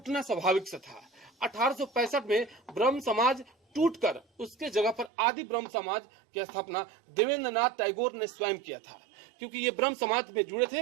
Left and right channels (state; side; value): drops out; left; at 5.1 s